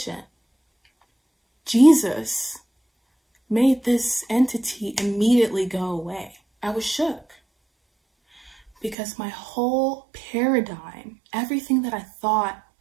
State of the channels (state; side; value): drops out; left; at 9.0 s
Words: Jesus made this entity immediately go away. I was shook. Because my whole paradigm, everything that I thought